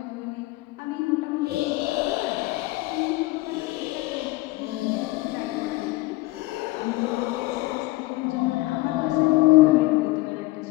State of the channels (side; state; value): right; quieter; 20.1 dB